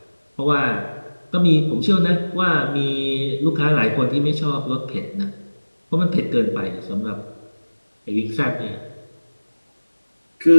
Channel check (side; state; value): both; inverted; correlation -1.00